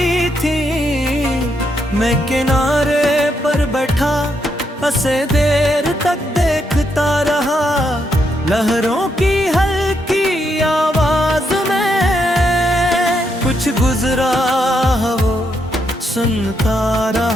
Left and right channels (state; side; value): normal; both; correlation 0.78